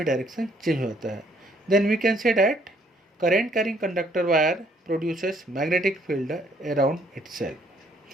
डायरेक्शन चेंज हो जाता है. Then we can say that current carrying conductor wire produces magnetic field around itself.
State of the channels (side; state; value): both; normal; correlation 0.65